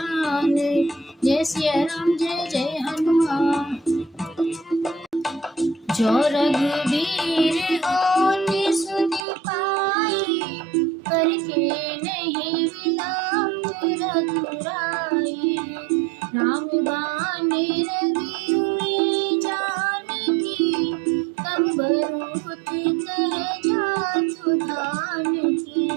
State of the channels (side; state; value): left; drops out; at 9.2 s